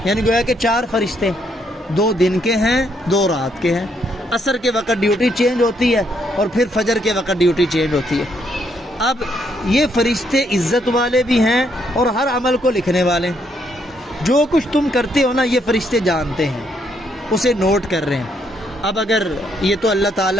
یعنی گویا کہ 4 فرشتے، 2 دن کے ہیں 2 رات کے ہیں، عصر کے وقت ڈیوٹی چینج ہوتی ہے اور پھر فجر کے وقت ڈیوٹی چینج ہوتی ہے۔ اب یہ فرشتے عزت والے بھی ہیں اور ہر عمل کو لکھنے والے ہیں، جو کچھ تم کرتے ہو نا یہ فرشتے جانتے ہیں، اسے نوٹ کر رہے ہیں، اب اگر یہ تو اللہ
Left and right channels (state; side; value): normal; both; correlation 0.73